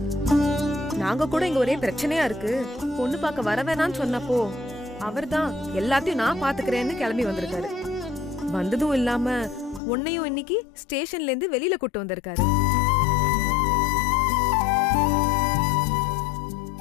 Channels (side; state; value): right; drops out; at 9.8 s